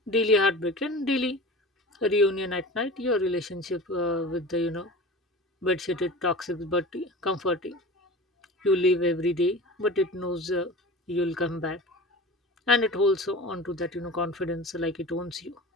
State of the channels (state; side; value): normal; both; correlation 0.35